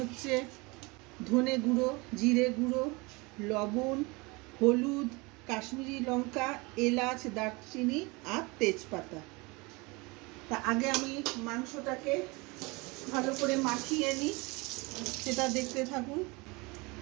ধনে গুঁড়ো, জিরে গুঁড়ো, লবণ, হলুদ, কাশ্মীরি লঙ্কা, এলাচ, দারচিনি আর তেজপাতা। তা আগে আমি মাংসটাকে ভালো করে মাখিয়ে নিই, সেটা দেখতে থাকুন।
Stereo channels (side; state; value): left; quieter; 25.9 dB